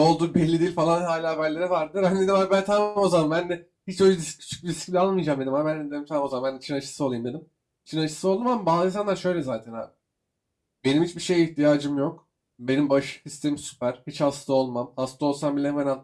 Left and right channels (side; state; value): both; identical; correlation 1.00